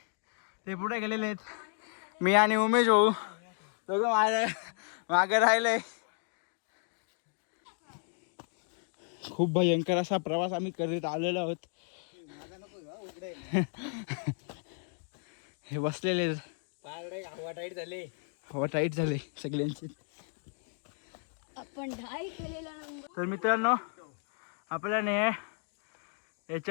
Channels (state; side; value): silent; right; 56 dB below the other